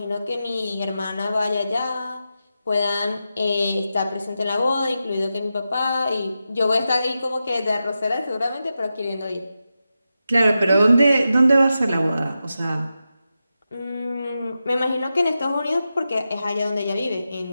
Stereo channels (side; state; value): both; inverted; correlation -0.90